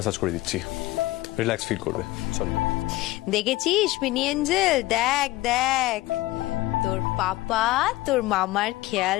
করে দিচ্ছি, রিল্যাক্স ফিল করবে, চলো। দেখেছিস মিনি এঞ্জেল, দেখ দেখ তোর পাপা তোর মামার খেয়াল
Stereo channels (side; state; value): right; quieter; 18.4 dB